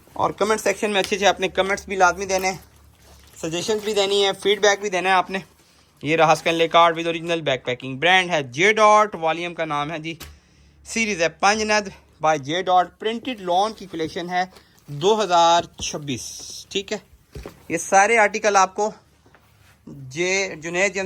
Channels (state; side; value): identical; both; correlation 1.00